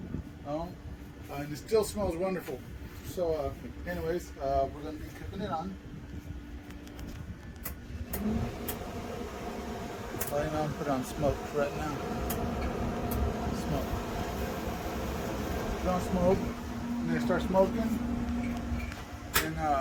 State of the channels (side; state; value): both; identical; correlation 1.00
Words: and it still smells wonderful. So anyways, we're going to be cooking it on. I'm going to put on smoke right now. Smoke. Put on smoke, and then start smoking. And